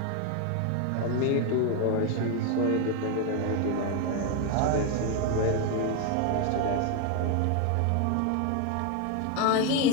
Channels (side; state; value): both; different; correlation 0.01